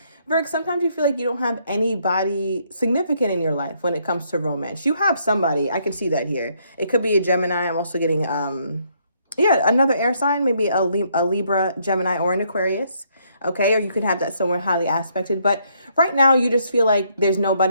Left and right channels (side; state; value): both; inverted; correlation -0.71